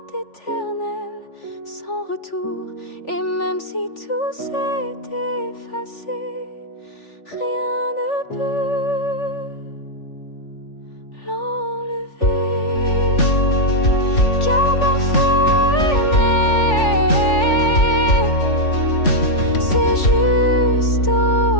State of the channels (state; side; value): late; right; 3.4 ms